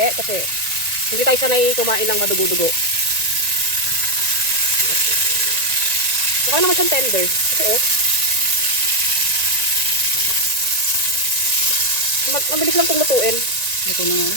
kasi hindi tayo sanay kumain ng madugo-dugo. Mukha naman siyang tender. Kasi mabilis lang itong lutuin. Ito na nga.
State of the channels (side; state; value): left; late; 1.9 ms